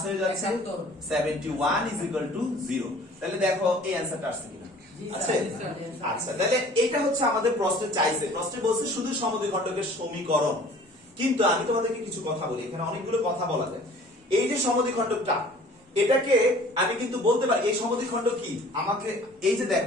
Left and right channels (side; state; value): both; normal; correlation 0.50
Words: হয়ে যাচ্ছে 71 is equal to 0। তাহলে দেখো এই অ্যানসারটা আসছে কিনা। আচ্ছা, তাহলে এটা হচ্ছে আমাদের প্রশ্নে চাইছে, প্রশ্নে বলছে শুধু সমদ্বিখণ্ডকের সমীকরণ। কিন্তু আমি তোমাদেরকে কিছু কথা বলি, এখানে অনেকগুলো কথা বলা যায়। এই যে সমদ্বিখণ্ডকটা, এটাকে আমি কিন্তু বলতে পারি এই সমদ্বিখণ্ডক কি, আমাকে এই যে